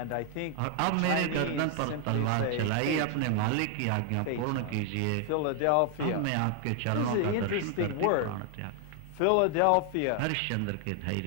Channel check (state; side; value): different; both; correlation 0.00